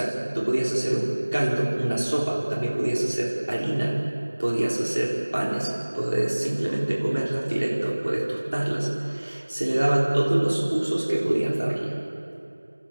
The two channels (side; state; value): both; inverted; correlation -1.00